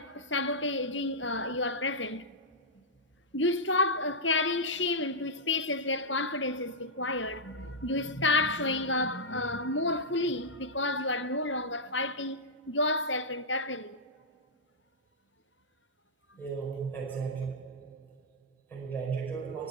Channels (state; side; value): normal; both; correlation -0.09